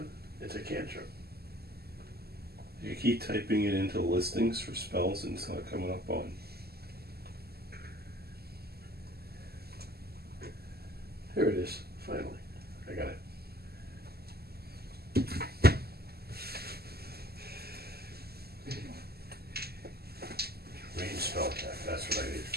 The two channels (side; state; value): left; late; 0.46 ms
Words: It's a cantrip. You keep typing it into listings for spells and it's not coming up on. Here it is. Finally. I got it. Range spell attack. That's what I